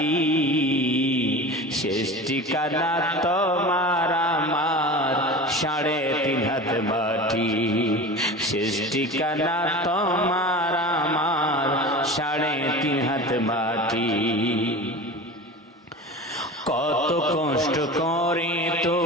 শেষ ঠিকানা তোমার আমার 3.5 হাত মাটি। শেষ ঠিকানা তোমার আমার 3.5 হাত মাটি। কত কষ্ট করে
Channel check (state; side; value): normal; both; correlation 0.33